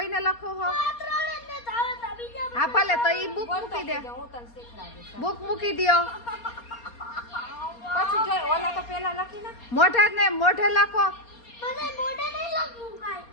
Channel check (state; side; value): late; right; 4.3 ms